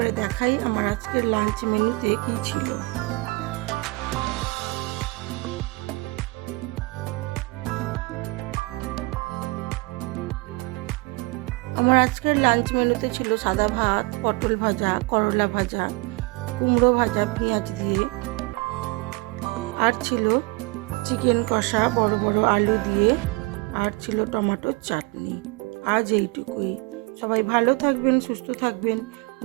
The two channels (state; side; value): quieter; left; 25.3 dB